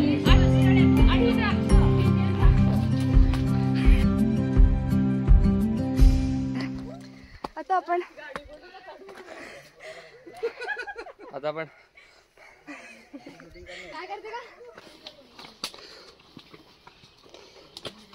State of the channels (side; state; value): both; identical; correlation 1.00